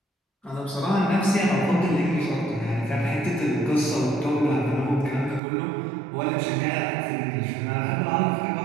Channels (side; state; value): left; drops out; at 5.4 s